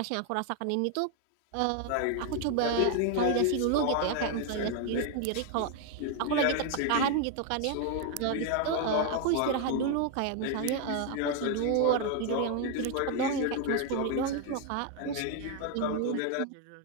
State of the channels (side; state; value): both; different; correlation 0.01